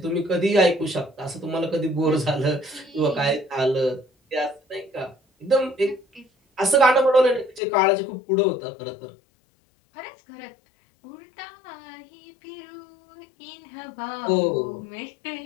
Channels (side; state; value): right; drops out; at 7.6 s